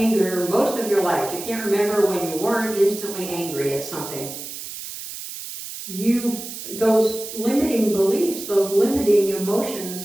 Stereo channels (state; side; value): noise; right; hiss, 10 dB below the sound